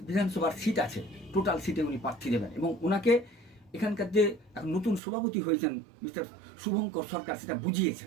বিধানসভার সিট আছে, টোটাল সিটে উনি প্রার্থী দেবেন। এবং ওনাকে এখানকার যে নতুন সভাপতি হয়েছেন মিস্টার শুভঙ্কর সরকার, সেটা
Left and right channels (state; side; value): drops out; left; at 5.0 s